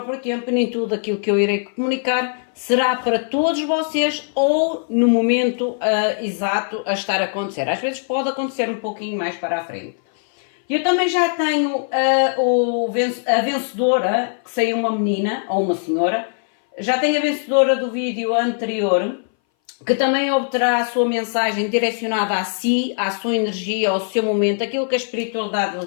tempo e nem tudo aquilo que eu irei comunicar será para todos vocês ou no momento exato a estar a acontecer. Às vezes pode acontecer um pouquinho mais para a frente. Eu também já tenho a vencedora, que saiu uma menina ou uma senhora, já tenho a vencedora do vídeo anterior, que também obterá a sua mensagem direcionada a si, à sua energia, ao seu momento, aquilo que a espiritualidade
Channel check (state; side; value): silent; right; 60 dB below the other